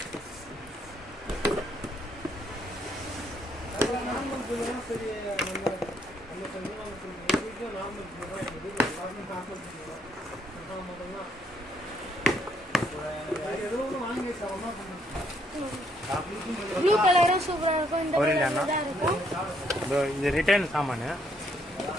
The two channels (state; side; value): normal; both; correlation 0.71